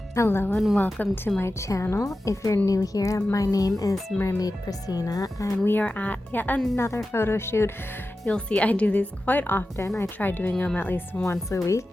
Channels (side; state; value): both; normal; correlation 0.93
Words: Hello and welcome to my channel. If you're new here, my name is Mermaid Prasina and we are at yet another photo shoot. You'll see I do these quite often. I try doing them at least once a week